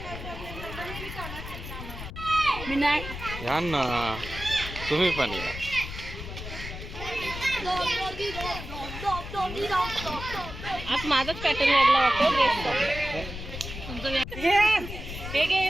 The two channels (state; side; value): noise; left; rumble, 9 dB below the sound